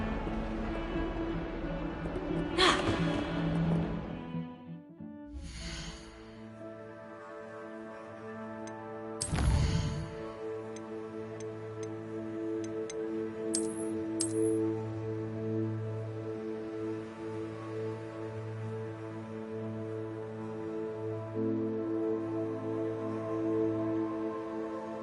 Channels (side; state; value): both; identical; correlation 1.00